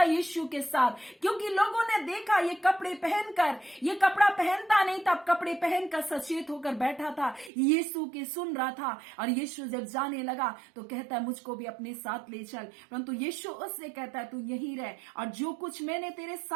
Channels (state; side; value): drops out; left; at 7.5 s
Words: यीशु के साथ, क्योंकि लोगों ने देखा ये कपड़े पहनकर, ये कपड़ा पहनता नहीं था, कपड़े पहनकर सचेत होकर बैठा था, यीशु की सुन रहा था। और यीशु जब जाने लगा तो कहता है, मुझको भी अपने साथ ले चल। परंतु यीशु उससे कहता है, तू यहीं रह, और जो कुछ मैंने तेरे